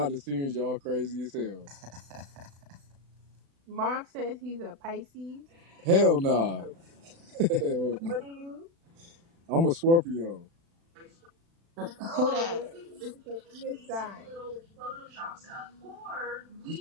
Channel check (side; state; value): left; late; 36 ms